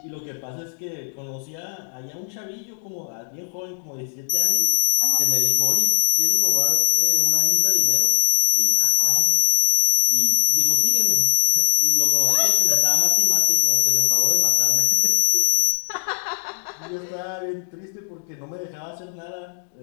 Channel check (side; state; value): right; silent; digital silence